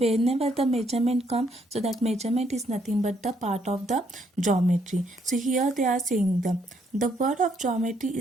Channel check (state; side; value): normal; both; correlation 0.71